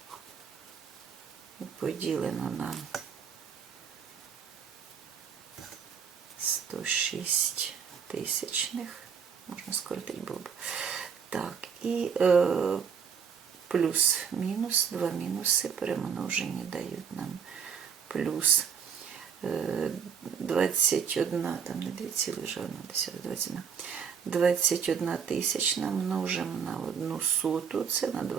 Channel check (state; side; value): quieter; left; 6.9 dB